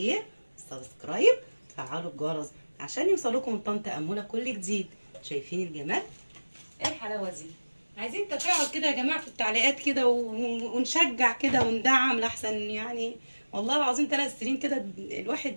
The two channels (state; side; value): inverted; both; correlation -1.00